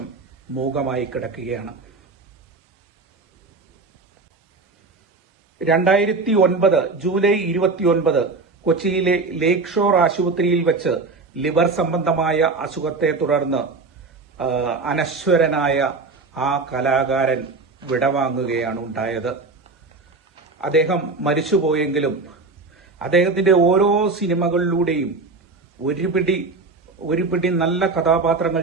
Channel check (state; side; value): quieter; left; 3.9 dB